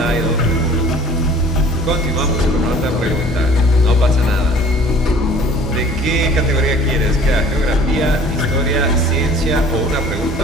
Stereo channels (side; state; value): both; normal; correlation 0.50